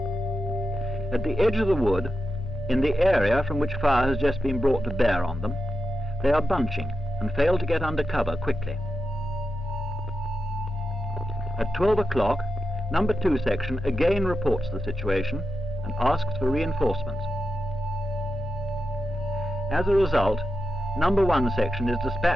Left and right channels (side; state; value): both; normal; correlation 0.88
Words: At the edge of the wood, in the area from which fire has just been brought to bear on them, they are bunching and fail to get under cover quickly. At 12 o'clock, number 2 section again reports the situation and asks for reinforcements. As a result, number 1 section is